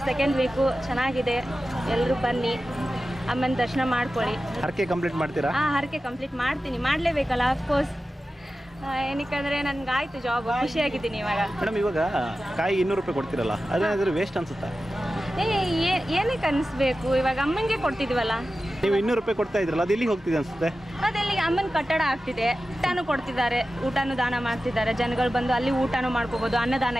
ಸೆಕೆಂಡ್ ವೀಕು ಚೆನ್ನಾಗಿದೆ. ಎಲ್ಲರೂ ಬನ್ನಿ, ಅಮ್ಮನ ದರ್ಶನ ಮಾಡ್ಕೊಳ್ಳಿ. ಹರಕೆ ಕಂಪ್ಲೀಟ್ ಮಾಡ್ತೀರಾ? ಹರಕೆ ಕಂಪ್ಲೀಟ್ ಮಾಡ್ತೀನಿ, ಮಾಡಲೇಬೇಕಲ್ಲ ಅಫ್ಕೋರ್ಸ್. ಏನಕ್ಕಂದರೆ ನನಗಾಯ್ತು ಜಾಬ್, ಖುಷಿಯಾಗಿದ್ದೀನಿ ಇವಾಗ. ಮೇಡಮ್, ಇವಾಗ ಕಾಯಿ 200 ರೂಪಾಯಿ ಕೊಡ್ತೀರಲ್ಲ, ಅದೇನಾದರೂ ವೇಸ್ಟ್ ಅನ್ಸುತ್ತಾ? ಏನಕ್ಕೆ ಅನಿಸ್ಬೇಕು, ಇವಾಗ ಅಮ್ಮನಿಗೆ ಕೊಡ್ತಿದ್ವಲ್ಲ. ನೀವು 200 ರೂಪಾಯಿ ಕೊಡ್ತಾ ಇದ್ರಲ್ಲ, ಅದು ಎಲ್ಲಿಗೆ ಹೋಗ್ತಿದೆ ಅನ್ಸುತ್ತೆ? ಅದೆಲ್ಲಿ ಅಮ್ಮನ ಕಟ್ಟಡ ಆಗ್ತಿದೆ, ಊಟನೂ ಕೊಡ್ತಿದ್ದಾರೆ, ಊಟನೂ ದಾನ ಮಾಡ್ತಿದ್ದಾರೆ. ಜನಗಳು ಬಂದು ಅಲ್ಲಿ ಊಟನೂ ಮಾಡ್ಕೋಬೋದು, ಅನ್ನದಾನ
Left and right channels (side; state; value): both; normal; correlation 0.94